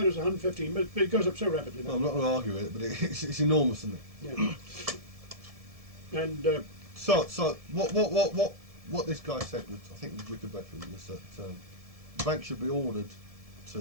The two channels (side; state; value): left; late; 1.7 ms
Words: it was 115, but it goes up so rapidly now. Well, I'm not going to argue with it, but it's enormous, isn't it? Yeah. And so what this guy said, was, I think was Richard Bedford, was that the bank should be ordered